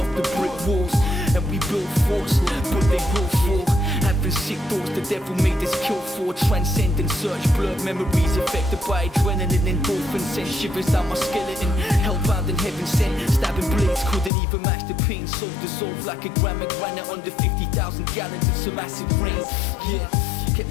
off the brick walls. And we built forts, but they will fall. Having sick thoughts the devil made us kill for. Transcendent search, blurred memories affected by adrenaline. Endorphins sent shivers down my skeleton. Hellbound in heaven sent, stabbing blades couldn't even match the pain. Soul dissolved like a gram of granite under 50,000 gallons of some acid rain. Yeah, kept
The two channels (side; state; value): right; drops out; at 14.3 s